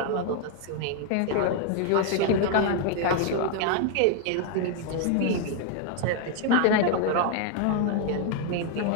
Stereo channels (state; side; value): different; both; correlation 0.01